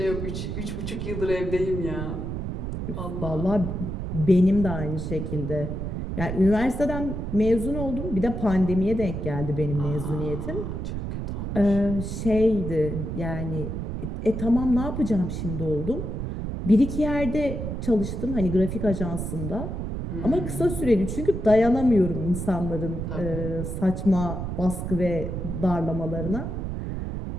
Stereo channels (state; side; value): noise; right; rumble, 4 dB below the sound